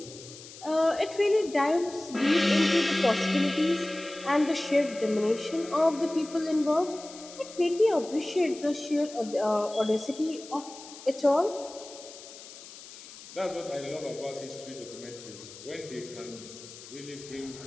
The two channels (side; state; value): left; noise; hiss, 16 dB below the sound